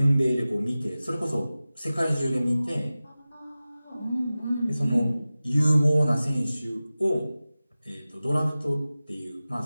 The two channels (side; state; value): both; inverted; correlation -0.96